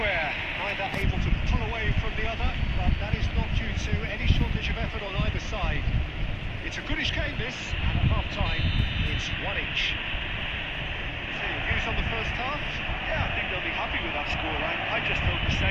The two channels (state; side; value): identical; both; correlation 1.00